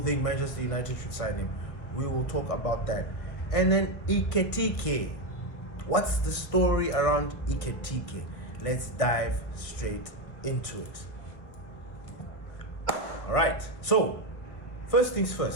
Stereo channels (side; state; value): right; late; 1.3 ms